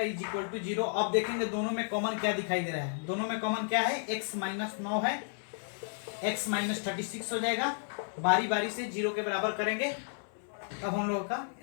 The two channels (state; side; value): silent; right; 56 dB below the other